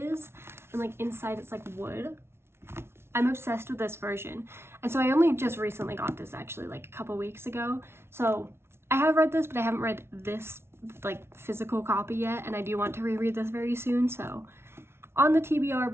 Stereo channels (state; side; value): late; left; 0.12 ms